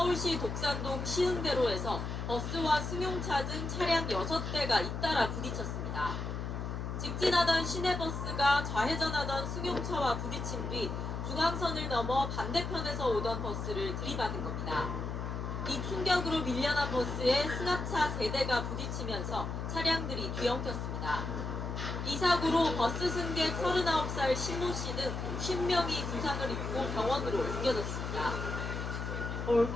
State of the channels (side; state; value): left; noise; hum, 4 dB below the sound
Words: 독산동 시흥대로에서 버스와 승용차 등 차량 6대가 잇따라 부딪혔습니다. 직진하던 시내버스가 좌회전하던 승용차와 부딪힌 뒤 중앙선을 넘어 반대편에서 오던 버스를 들이받은 겁니다. 이 충격으로 밀려난 버스에 승합차 3대가 부딪히면서 차량들이 뒤엉켰습니다. 이 사고로 버스 승객 39살 신모 씨 등 50명이 부상을 입고 병원으로 옮겨졌습니다.